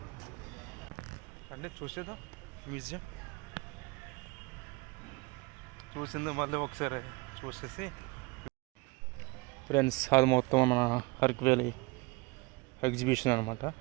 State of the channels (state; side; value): quieter; left; 25.5 dB